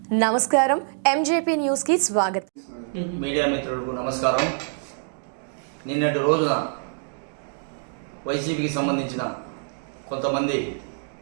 నమస్కారం MJP news కి స్వాగతం. మీడియా మిత్రులకు నమస్కారం. నిన్నటి రోజున వైసీపీకి సంబంధించిన కొంతమంది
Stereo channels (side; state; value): left; silent; 62 dB below the other